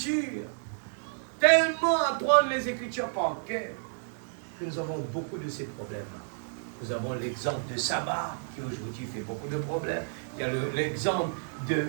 tellement à apprendre les Écritures par cœur, que nous avons beaucoup de ces problèmes-là. Nous avons l'exemple de sabbat, qui aujourd'hui fait beaucoup de problèmes. Il y a l'exemple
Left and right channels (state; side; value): silent; left; digital silence